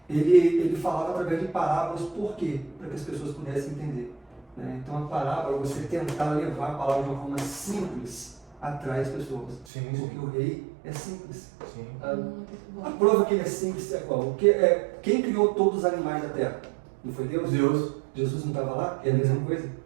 ele falava através de parábolas, por quê? Para que as pessoas pudessem entender. Né? Então a parábola, você tentar levar a palavra de uma forma simples, atrai as pessoas. Porque o rei é simples. A prova que ele é simples é qual? Quem criou todos os animais da terra? Não foi Deus? Jesus não estava lá? É a mesma coisa?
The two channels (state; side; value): drops out; left; at 9.7 s